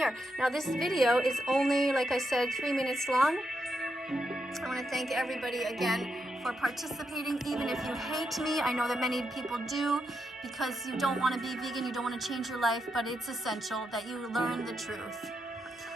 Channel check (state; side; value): normal; both; correlation 0.83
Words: Now, this video is only, like I said, 3 minutes long. I want to thank everybody again for participating, even if you hate me. I know that many people do, because you don't want to be vegan, you don't want to change your life, but it's essential that you learn the truth.